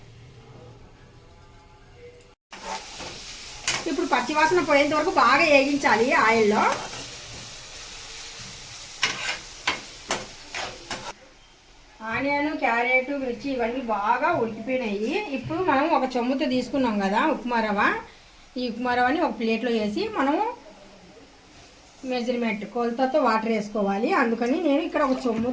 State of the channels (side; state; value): both; identical; correlation 1.00